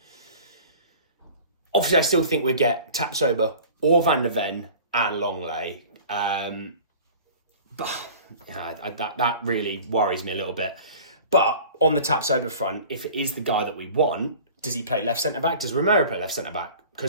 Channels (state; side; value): inverted; both; correlation -0.43